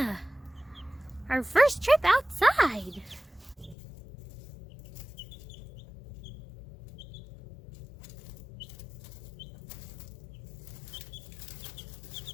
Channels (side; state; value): right; drops out; at 3.8 s